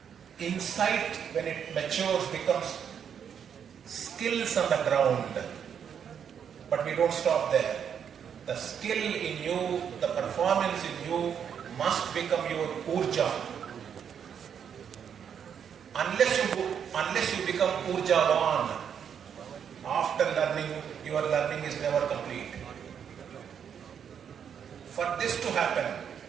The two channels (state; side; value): quieter; left; 7.9 dB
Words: Insight, when it matures, becomes skills on the ground. But we don't stop there. The skill in you, the performance in you must become your urja. Unless you become urjavan, after learning, your learning is never complete. For this to happen,